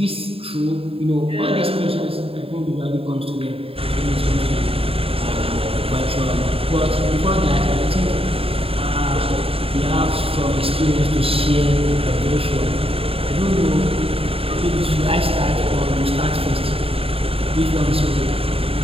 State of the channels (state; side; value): late; left; 0.27 ms